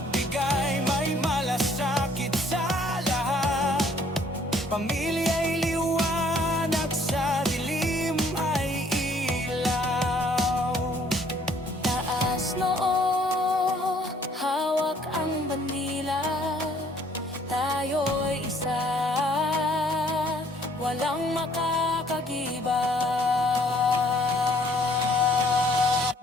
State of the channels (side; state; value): both; normal; correlation 0.61